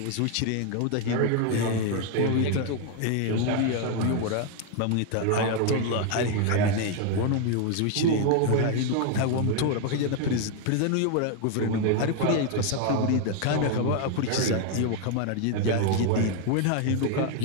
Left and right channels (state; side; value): different; both; correlation 0.01